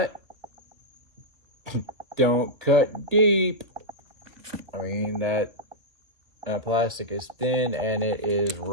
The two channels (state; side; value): late; left; 1.7 ms